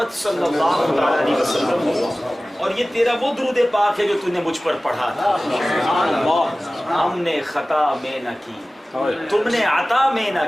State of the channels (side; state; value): both; normal; correlation 0.97